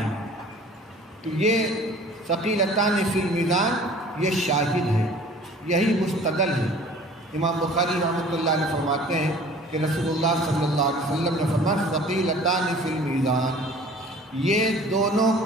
تو یہ ثقیلتان فی المیزان یہ شاہد ہے، یہی مستدل ہے۔ امام بخاری رحمۃ اللہ علیہ فرماتے ہیں کہ رسول اللہ صلی اللہ علیہ وسلم نے فرمایا ثقیلتان فی المیزان، یہ دونوں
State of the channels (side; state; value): both; normal; correlation 0.48